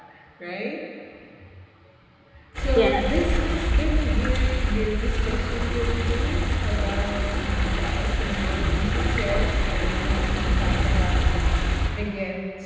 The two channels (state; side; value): identical; both; correlation 1.00